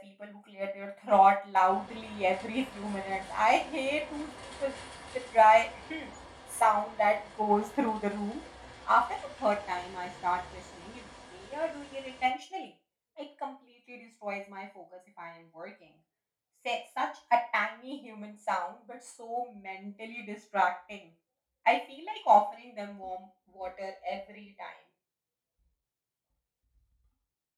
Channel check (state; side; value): identical; both; correlation 1.00